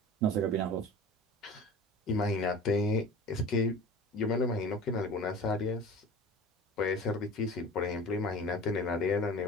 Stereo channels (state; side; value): normal; both; correlation 0.38